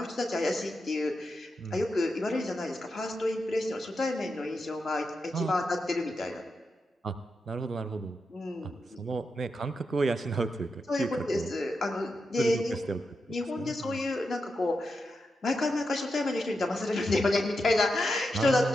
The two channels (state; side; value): normal; both; correlation 0.87